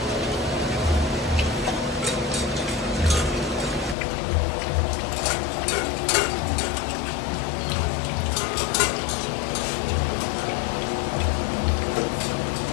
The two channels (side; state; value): right; drops out; at 4.0 s